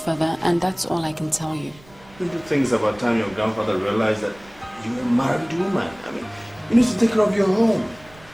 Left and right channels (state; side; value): noise; right; rumble, 25 dB below the sound